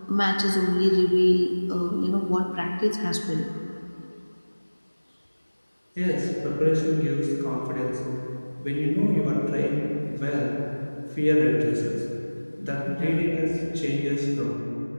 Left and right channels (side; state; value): both; inverted; correlation -1.00